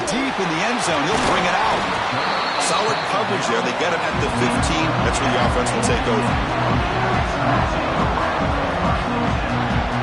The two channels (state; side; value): identical; both; correlation 1.00